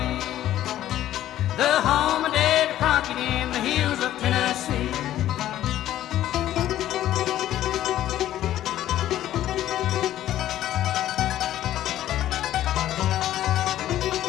the home of Dave Crockett in the hills of Tennessee.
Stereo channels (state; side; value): quieter; right; 12.9 dB